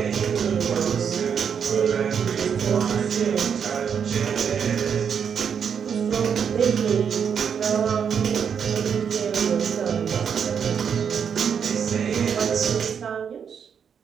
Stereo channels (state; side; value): quieter; left; 7.3 dB